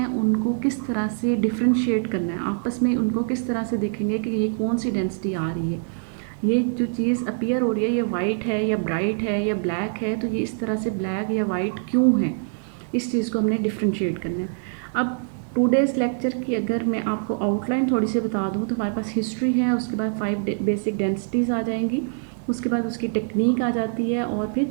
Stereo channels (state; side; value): silent; left; 62 dB below the other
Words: उनको किस तरह से डिफ्रेंशिएट करना है, आपस में उनको किस तरह से देखेंगे कि ये कौन सी डेंसिटी आ रही है, ये जो चीज़ अपीयर हो रही है ये वाइट है या ब्राइट है या ब्लैक है, तो ये इस तरह से ब्लैक या वाइट क्यों है, इस चीज़ को हमने डिफ्रेंशिएट करना है। अब 2 डेज़ लेक्चर की अगर मैं आपको आउटलाइन थोड़ी सी बता दूँ, तो हमारे पास हिस्ट्री है, उसके बाद 5 बेसिक डेंसिटीज़ आ जाएंगी, उसके बाद उसकी टेक्निक आ जाती है और